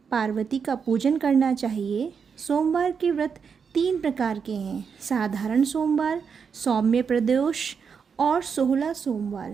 पार्वती का पूजन करना चाहिए। सोमवार के व्रत 3 प्रकार के हैं: साधारण सोमवार, सौम्य प्रदोष और 16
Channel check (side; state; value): left; quieter; 6.3 dB